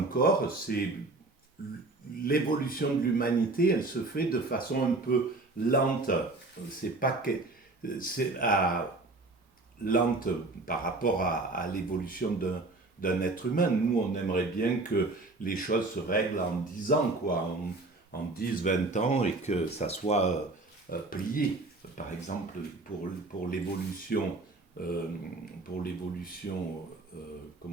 C'est l'évolution de l'humanité, elle se fait de façon un peu lente. C'est pas que c'est lente par rapport à l'évolution d'un être humain. Nous, on aimerait bien que les choses se règlent en 10 ans, quoi, en 10, 20 ans, et que ça soit plié. Par exemple, pour l'évolution,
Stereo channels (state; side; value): quieter; left; 3.1 dB